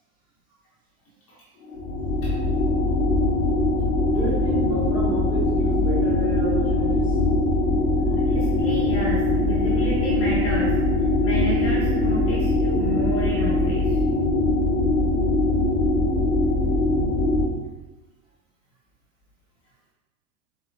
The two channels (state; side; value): normal; both; correlation 0.36